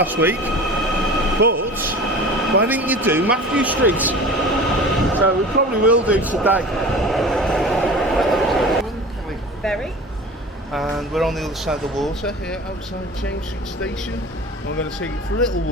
week, but why didn't you do Matthew Street? So we probably will do today. Very. And we're on the other side of the water here outside James Street Station. And we're going to take you for a little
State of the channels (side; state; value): both; normal; correlation 0.38